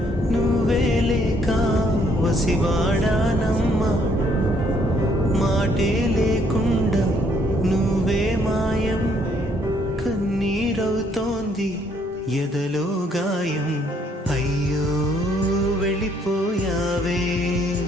నువ్వే లేక వసివాడానమ్మా మాటే లేకుండా నువ్వే మాయం కన్నీరవుతోంది ఎదలో గాయం అయ్యో వెళ్ళిపోయావే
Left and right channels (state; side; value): normal; both; correlation 0.67